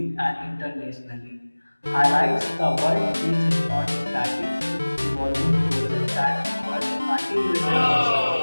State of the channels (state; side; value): inverted; both; correlation -1.00